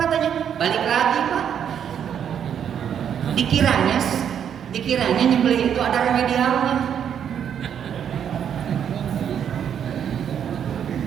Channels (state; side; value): quieter; left; 8.6 dB